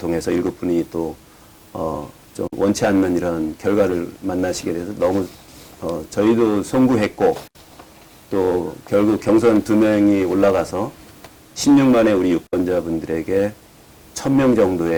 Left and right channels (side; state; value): both; identical; correlation 1.00